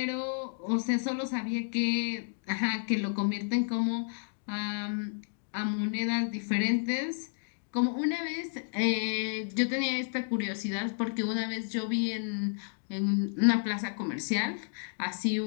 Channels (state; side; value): silent; right; digital silence